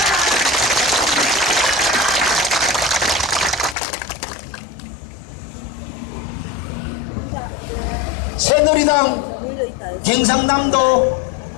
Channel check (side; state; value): right; drops out; at 3.8 s